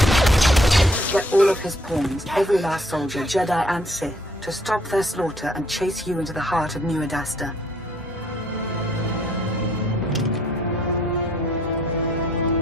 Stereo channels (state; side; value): normal; both; correlation 0.65